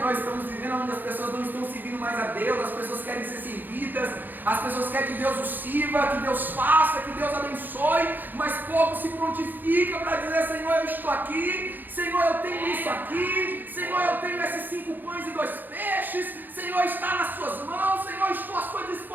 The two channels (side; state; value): left; late; 0.088 ms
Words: estamos vivendo, onde as pessoas não estão servindo mais a Deus, as pessoas querem ser servidas, as pessoas querem que Deus os sirva, que Deus faça, que Deus abençoe, mas pouco se prontifica para dizer, Senhor, eu estou aqui, Senhor, eu tenho isso aqui, Senhor, eu tenho esses 5 pães e 2 peixes, Senhor, está nas suas mãos, Senhor, estou à sua